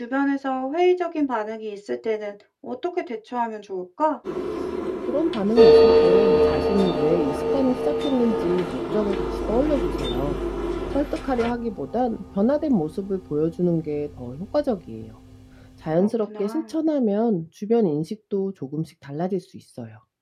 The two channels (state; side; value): identical; both; correlation 1.00